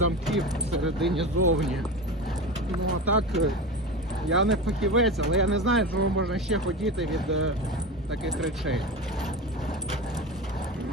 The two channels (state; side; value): normal; both; correlation 0.26